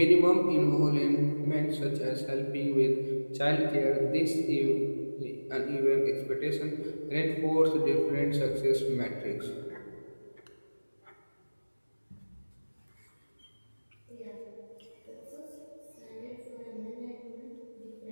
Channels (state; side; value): inverted; both; correlation -1.00